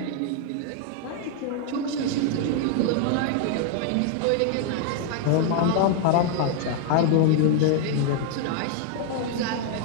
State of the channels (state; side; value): different; both; correlation 0.00